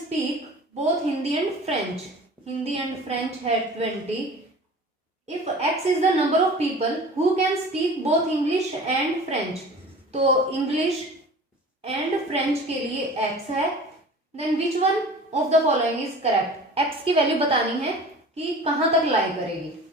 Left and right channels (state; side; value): normal; both; correlation 0.41